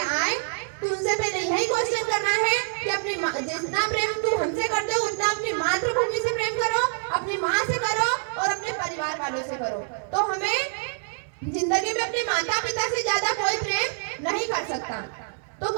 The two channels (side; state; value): left; silent; 61 dB below the other